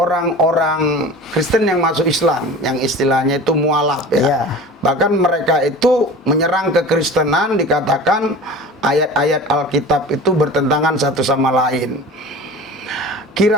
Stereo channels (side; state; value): both; normal; correlation 0.38